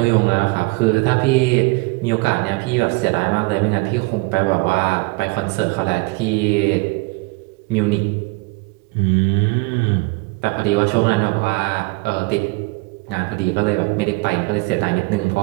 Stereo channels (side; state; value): left; quieter; 26.5 dB